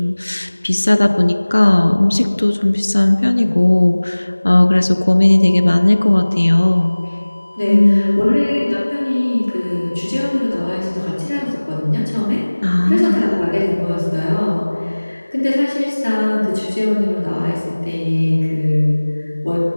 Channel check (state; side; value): inverted; both; correlation -1.00